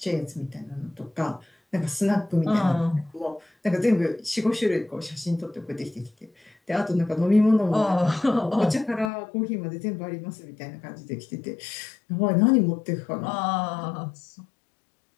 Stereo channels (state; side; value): drops out; right; at 9.1 s